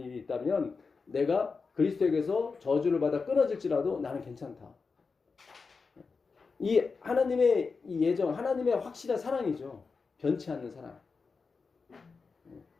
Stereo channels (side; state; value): right; quieter; 4.7 dB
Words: 있다면 내가 그리스도에게서 저주를 받아 끊어질지라도 나는 괜찮다. 이 하나님의 이 예정, 하나님의 확실한 사랑이죠. 변치 않는 사랑.